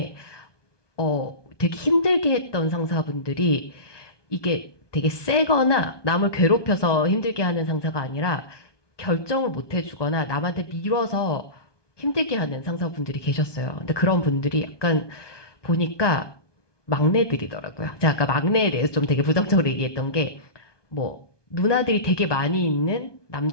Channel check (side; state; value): right; late; 1.2 ms